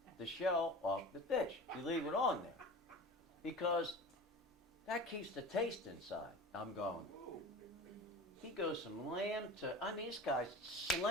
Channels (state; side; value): normal; both; correlation 0.34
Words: shell off the fish. You leave it on there because that keeps the taste inside." I'm going. He goes from lamb to, I mean, this guy's